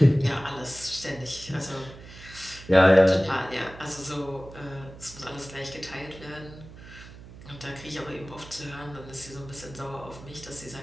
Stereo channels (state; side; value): noise; right; hum, 17 dB below the sound